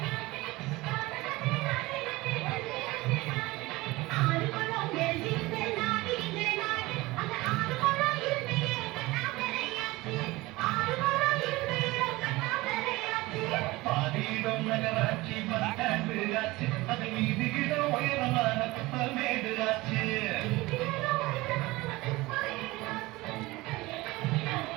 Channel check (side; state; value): left; quieter; 20.6 dB